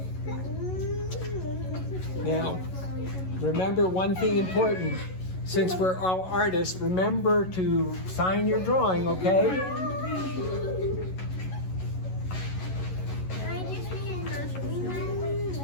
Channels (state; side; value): late; right; 11 ms